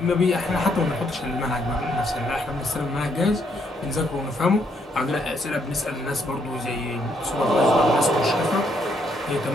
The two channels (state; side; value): normal; both; correlation 0.73